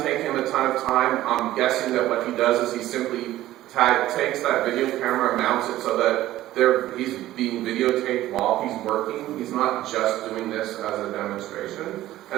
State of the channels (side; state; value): left; quieter; 14.8 dB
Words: take him a ton of time. I'm guessing that what he does is he simply takes that video camera and mounts it so that he's being videotaped while he's working. He's not just doing this as a demonstration.